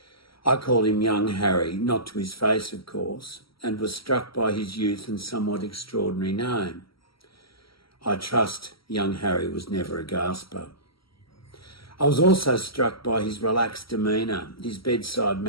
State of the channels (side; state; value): right; late; 0.75 ms